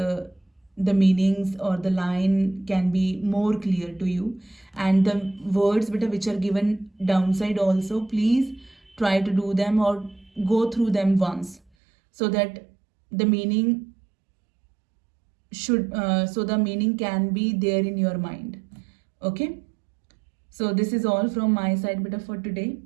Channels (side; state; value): left; drops out; at 11.6 s